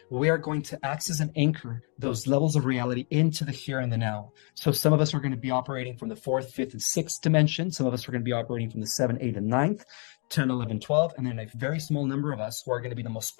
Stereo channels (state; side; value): quieter; right; 38.4 dB